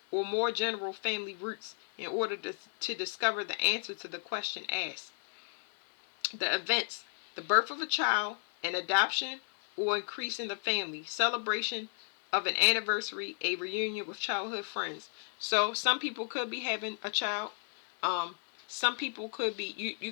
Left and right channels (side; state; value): right; silent; 55 dB below the other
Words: or more general family roots in order to discover the answer to the question asked. The events: the birth of a child, an adoption, or increase in the family, celebration of an anniversary, a reunion with childhood friends. So some people could be having a child. Some people could be, you